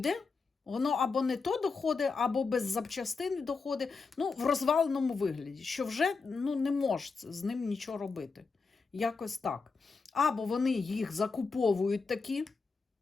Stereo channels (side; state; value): right; quieter; 4.6 dB